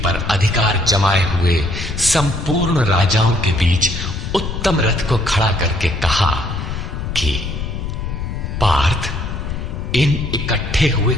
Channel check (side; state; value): left; noise; rumble, 5 dB below the sound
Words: अधिकार जमाए हुए संपूर्ण राजाओं के बीच उत्तम रथ को खड़ा करके कहा कि पार्थ, इन इकट्ठे हुए